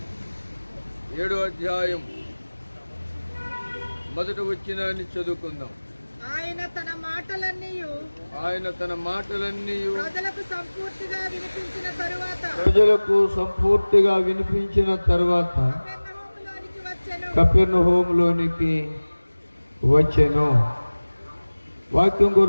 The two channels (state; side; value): inverted; both; correlation -1.00